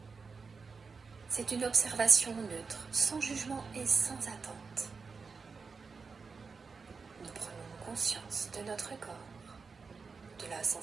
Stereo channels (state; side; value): quieter; left; 4.9 dB